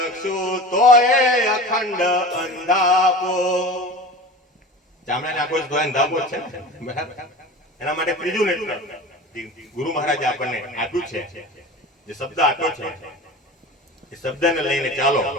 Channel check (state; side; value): normal; both; correlation 0.34